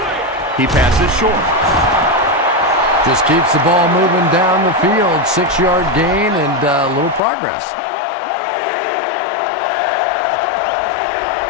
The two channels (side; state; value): right; drops out; at 7.2 s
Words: He passes short. Just keeps the ball moving down the field. 6-yard gain and a little progress.